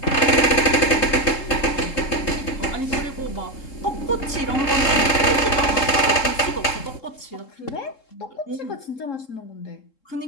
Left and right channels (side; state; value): right; late; 3.7 ms